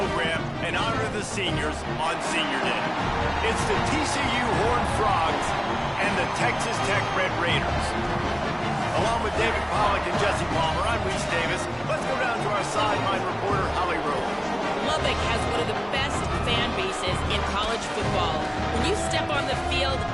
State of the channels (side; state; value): both; identical; correlation 1.00